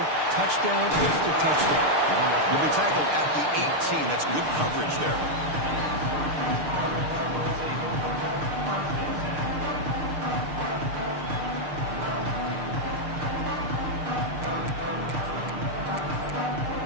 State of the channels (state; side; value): late; left; 6.6 ms